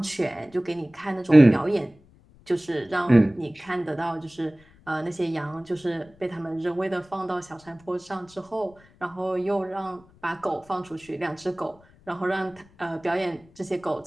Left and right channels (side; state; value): left; noise; rumble, 28 dB below the sound